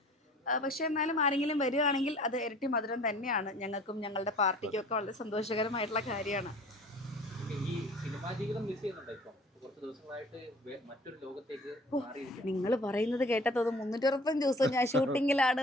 പക്ഷെ എന്നാലും ആരെങ്കിലും വരികയാണെങ്കിൽ അത് ഇരട്ടി മധുരം തന്നെയാണ്. ഞങ്ങൾക്കും ഞങ്ങളുടെ പാർട്ടിക്കും ഒക്കെ വളരെ സന്തോഷകരമായിട്ടുള്ള കാര്യമാണ്. ഈ സിനിമാ ജീവിതം മിസ് ചെയ്യുന്നുണ്ടോ? ഇപ്പം കുറച്ച് ദിവസങ്ങളായിട്ട് മറ്റൊരു ലോകത്തേക്ക് നിങ്ങൾ പറയുന്നത് കേട്ടത് 365 ദിവസം ഞാൻ ഷൂട്ടിങ്ങിലാണ്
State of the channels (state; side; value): normal; both; correlation 0.48